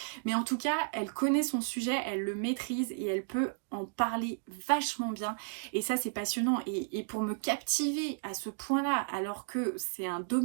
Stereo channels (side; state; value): left; silent; digital silence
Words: mais en tout cas elle connaît son sujet, elle le maîtrise et elle peut en parler vachement bien et ça c'est passionnant et pour me captiver à ce point là alors que c'est un